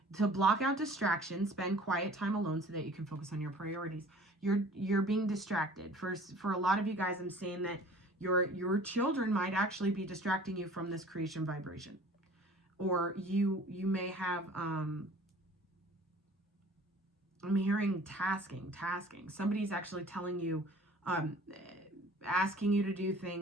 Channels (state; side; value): normal; both; correlation 0.48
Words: To block out distractions, spend quiet time alone so that you can focus on your priorities. You're being distracted. For a lot of you guys, I'm saying that your children might actually be distracting you from this creation vibration. Or you may have I'm hearing tasking. Somebody's actually telling you, asking you to do